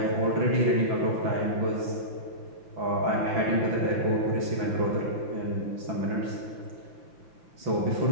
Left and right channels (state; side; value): late; left; 5.9 ms